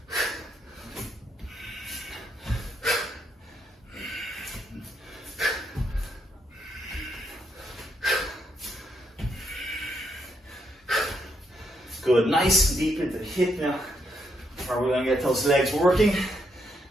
Good, nice and deep into the hip now, where we're going to get those legs working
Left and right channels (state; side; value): normal; both; correlation 0.77